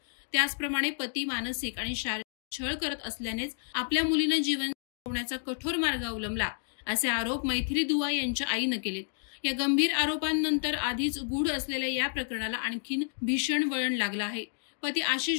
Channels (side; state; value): right; silent; digital silence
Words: त्याचप्रमाणे पती मानसिक आणि शारीरिक छळ करत असल्यानेच आपल्या मुलीनं जीवन संपवण्याचा कठोर मार्ग अवलंबला, असे आरोप मैथिली दुआ यांच्या आईनं केलेत। या गंभीर आरोपांनंतर आधीच गूढ असलेल्या या प्रकरणाला आणखीन भीषण वळण लागलं आहे। पती